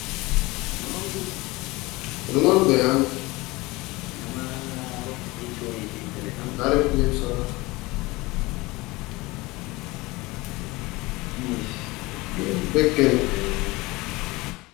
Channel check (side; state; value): right; quieter; 22.1 dB